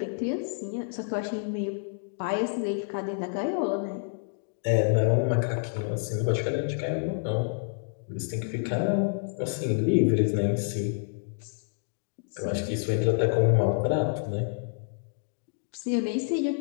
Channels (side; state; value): right; silent; digital silence